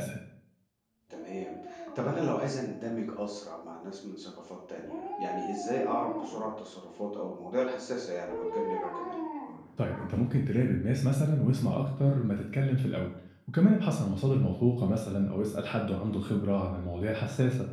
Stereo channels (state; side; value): identical; both; correlation 1.00